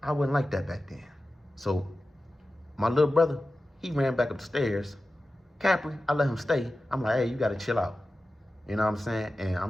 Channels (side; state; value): both; normal; correlation 0.94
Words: I wasn't like that back then. So my little brother, he ran back up the stairs. Capri, I let him stay. I'm like, hey, you gotta chill out. You know what I'm saying? And